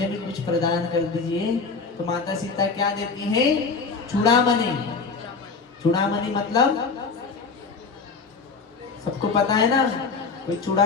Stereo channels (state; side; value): quieter; right; 4.7 dB